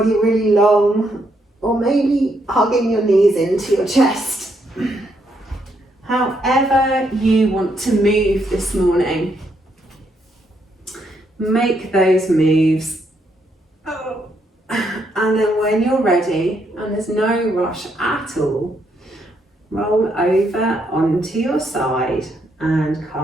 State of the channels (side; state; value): both; normal; correlation 0.76